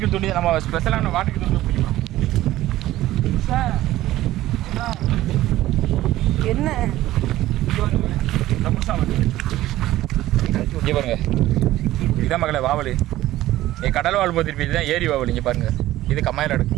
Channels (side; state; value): left; quieter; 15.3 dB